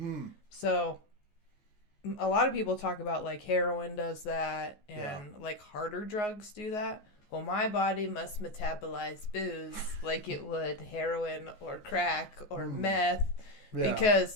So, a lot of people talk about, like, heroin does that and, like, harder drugs do that. Well, my body must metabolize booze like it would heroin or crack or meth. Yeah.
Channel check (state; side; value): late; right; 14 ms